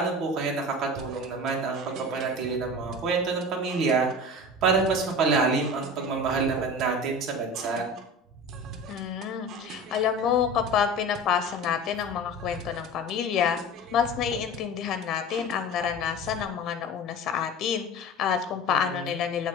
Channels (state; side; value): normal; both; correlation 0.34